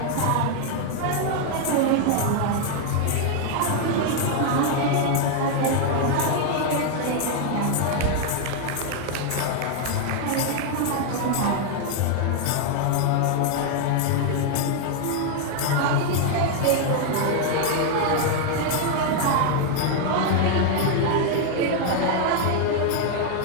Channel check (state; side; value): different; both; correlation 0.00